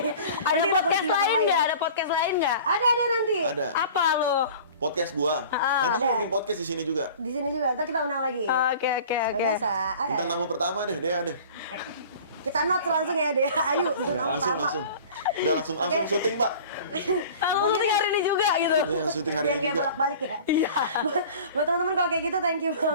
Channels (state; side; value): inverted; both; correlation -0.43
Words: Ada Nanti podcast kita lain kulik nggak? ya. Ada podcast lain nggak? Ada nanti. Ada. Apa lo? Podcast gua. Nanti ada. gue bikin podcast di sini juga. Di sini juga. Ntar kita undang lagi. Oke. Biasa. Bintang tamu pertama deh, Dea deh. Kita notes langsung ya deh. Ayo. Langsung. Udah langsung syuting, Pak. Lalu syuting hari ini juga gitu. Ini yang syuting hari Biar ini kayak juga. bolak-balik ya. Iya. Buat teman-teman kalau kayak gitu thank you